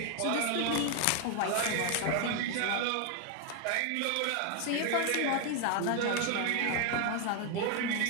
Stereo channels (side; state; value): both; different; correlation 0.01